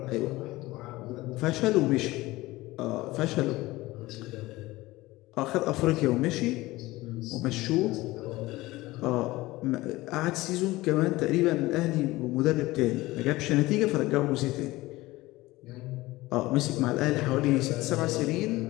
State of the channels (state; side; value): quieter; right; 19.2 dB